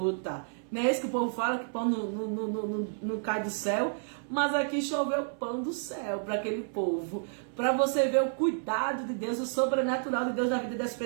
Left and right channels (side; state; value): left; silent; 57 dB below the other